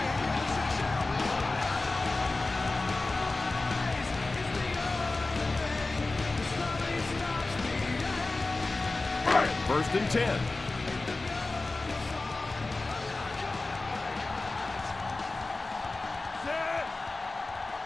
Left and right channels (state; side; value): quieter; right; 3.3 dB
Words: First and 10.